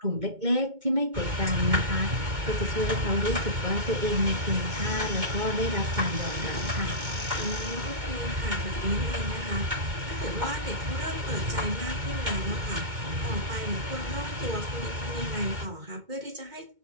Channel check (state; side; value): late; left; 2.2 ms